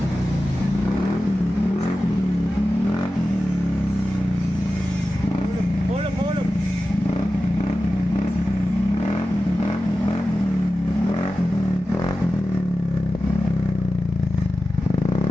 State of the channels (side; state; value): both; normal; correlation 0.93